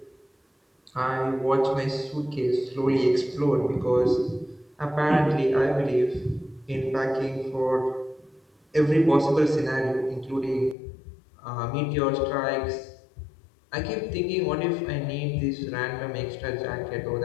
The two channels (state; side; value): drops out; right; at 10.8 s